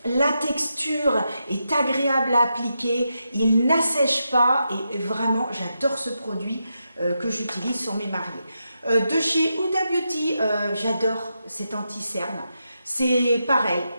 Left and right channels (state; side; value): inverted; both; correlation -0.85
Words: La texture est agréable à appliquer, il n'assèche pas et vraiment j'adore ce produit que j'utilise sur mes mariés. De chez Huda Beauty, j'adore cet anti-cerne. C'est pareil,